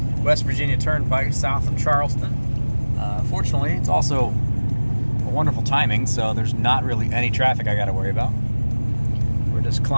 West Virginia Turnpike south of Charleston. Fortunately, it's also a wonderful timing, so there's not really any traffic I got to worry about. We're just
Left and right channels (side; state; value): both; inverted; correlation -1.00